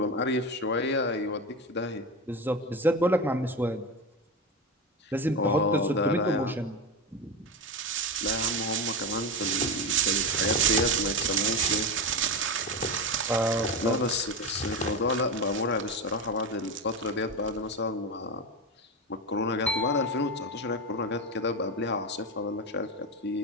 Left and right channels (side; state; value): both; normal; correlation 0.18